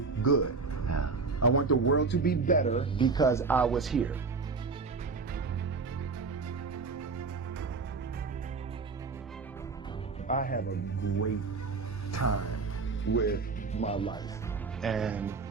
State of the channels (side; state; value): left; quieter; 4.4 dB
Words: good. I want the world to be better because I was here. I have a great time with my life, and